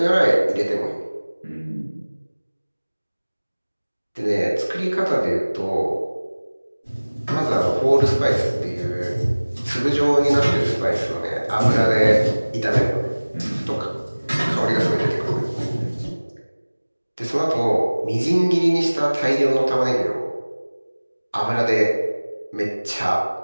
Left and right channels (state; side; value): inverted; both; correlation -1.00